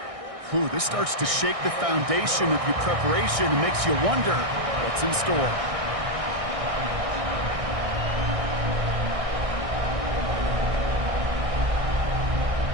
this starts to shake the foundation of your preparation and makes you wonder what's in store.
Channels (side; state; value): left; late; 1.6 ms